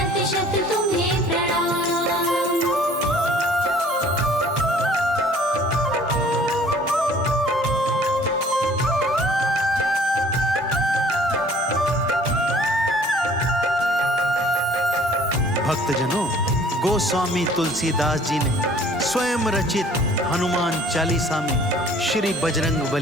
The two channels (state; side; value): normal; both; correlation 0.54